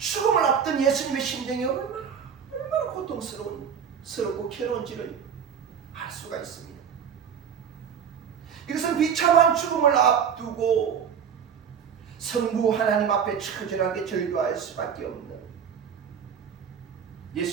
앞둔 예수님의 심정이 얼마나 고통스럽고 괴로운지를 알 수가 있습니다. 이것은 비참한 죽음을 앞두고 성부 하나님 앞에 처절하게 절규할 수밖에 없는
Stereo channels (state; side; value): quieter; left; 7.6 dB